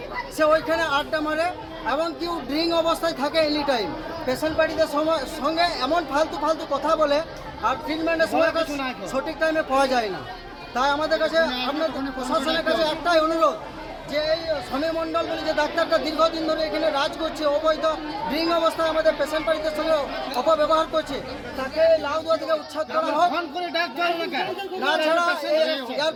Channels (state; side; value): identical; both; correlation 1.00